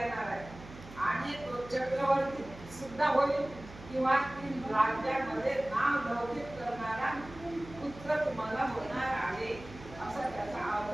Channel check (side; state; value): right; noise; hum, 16 dB below the sound